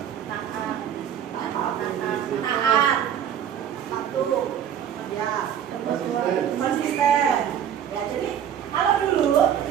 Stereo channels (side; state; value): left; quieter; 9.3 dB